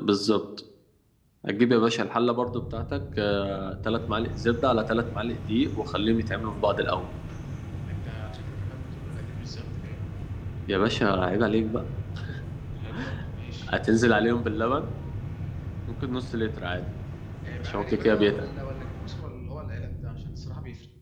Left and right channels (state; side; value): identical; both; correlation 1.00